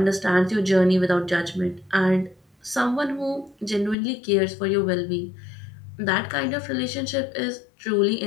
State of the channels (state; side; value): drops out; right; at 4.0 s